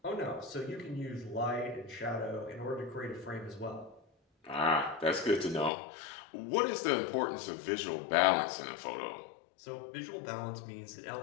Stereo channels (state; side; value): drops out; right; at 5.7 s